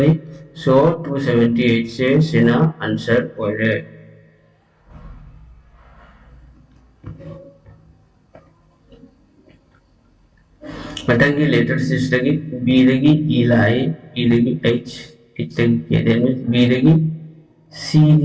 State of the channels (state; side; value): identical; both; correlation 1.00